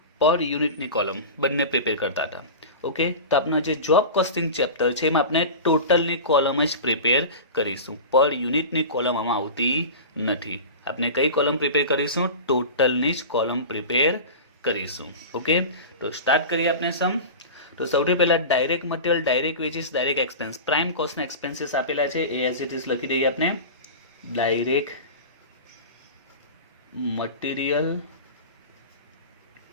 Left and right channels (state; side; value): inverted; both; correlation -0.30